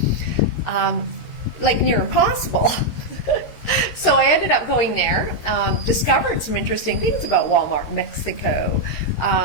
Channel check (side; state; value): right; late; 13 ms